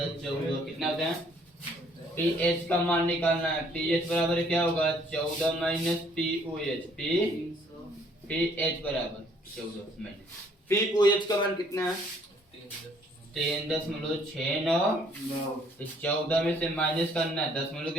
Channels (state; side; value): normal; both; correlation 0.62